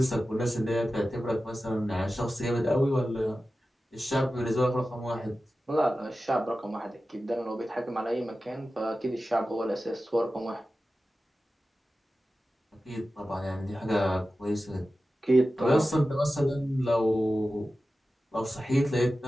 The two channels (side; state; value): both; normal; correlation 0.94